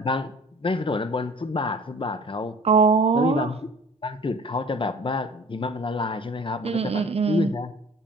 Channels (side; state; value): both; normal; correlation 0.47